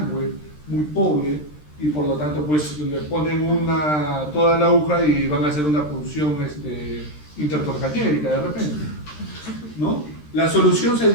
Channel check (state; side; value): late; right; 13 ms